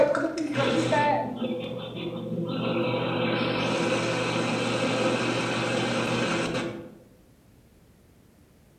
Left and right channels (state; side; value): identical; both; correlation 1.00